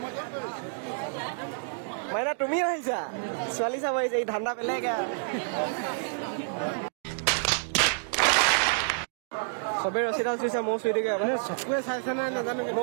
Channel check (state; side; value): silent; left; digital silence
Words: মাইনা তুমিও আহিছা ছোৱালী চাব আহিছে এই ঠাণ্ডা বেলেগ সবে ৰছীডাল চুইছে ময়ো চুই দিওঁ